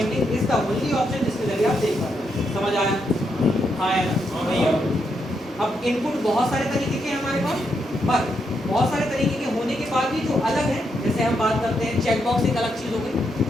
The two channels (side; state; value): both; normal; correlation 0.80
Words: is the only option जिसके जरिए आप सेव कर रहे हैं। समझ आया, हाँ या ना। अब इनपुट बहुत सारे तरीके के हैं हमारे पास, पर बहुत सारे तरीके के होने के बाद भी जो अलग है, जैसे हम बात करते हैं चेक बॉक्स एक अलग चीज़ हो गई,